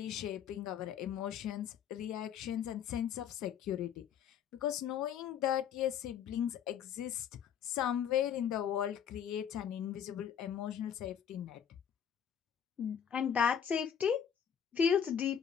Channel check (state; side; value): quieter; right; 8.5 dB